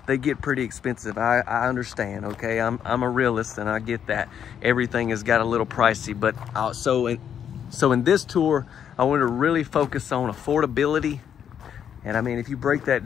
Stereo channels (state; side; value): quieter; right; 8.6 dB